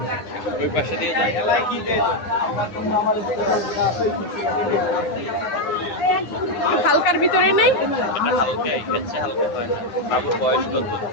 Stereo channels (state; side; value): late; right; 9.8 ms